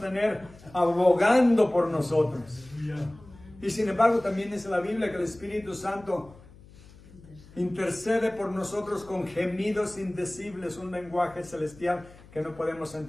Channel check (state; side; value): noise; left; hum, 22 dB below the sound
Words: abogando por nosotros? Y sin embargo también dice la Biblia que el Espíritu Santo intercede por nosotros con gemidos indecibles, un lenguaje celestial que no podemos